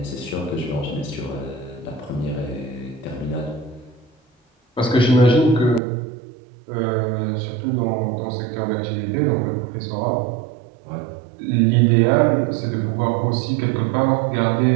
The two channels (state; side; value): drops out; left; at 5.8 s